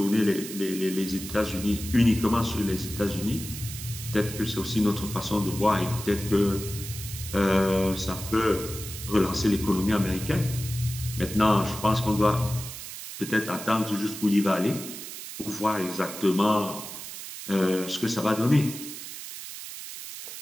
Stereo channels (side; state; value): right; noise; hiss, 10 dB below the sound